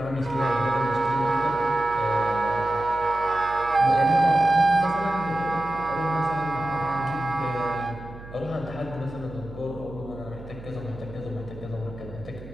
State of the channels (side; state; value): right; noise; hum, 15 dB below the sound